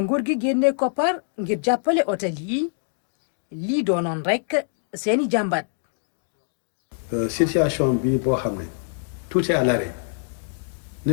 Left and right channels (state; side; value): silent; right; digital silence